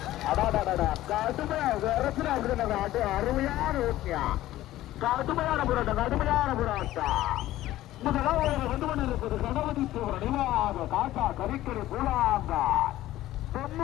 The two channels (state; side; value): quieter; right; 15.0 dB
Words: அருமையான ஓட்டியா கடுமையான போராட்டம். முதலாவது வந்து கொண்டிருப்பது கணபதி தேவர் நினைவாக காட்டா கரிக்கரை பூலாங்கார்